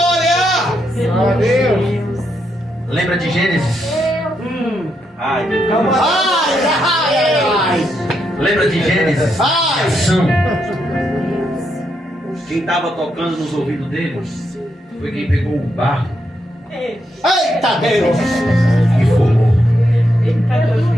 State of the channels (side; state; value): both; normal; correlation 0.80